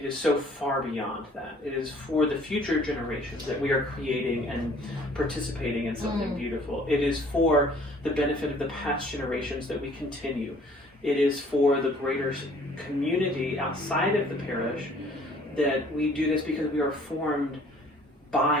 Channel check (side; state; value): both; normal; correlation 0.56